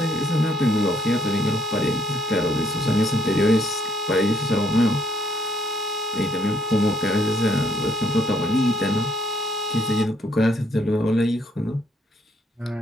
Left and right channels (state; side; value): normal; both; correlation 0.69